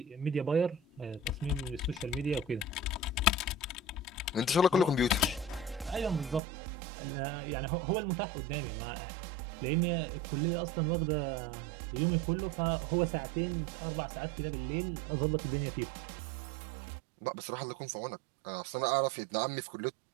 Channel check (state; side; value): drops out; left; at 6.4 s